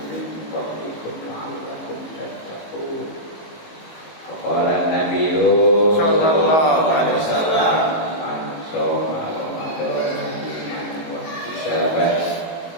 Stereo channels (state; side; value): late; right; 19 ms